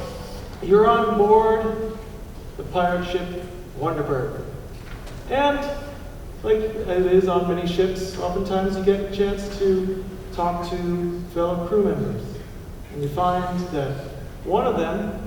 you're on board the pirate ship Wonderburg. And, like it is on many ships, oftentimes you get a chance to talk to fellow crew members. And you find that one of them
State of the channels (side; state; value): both; identical; correlation 1.00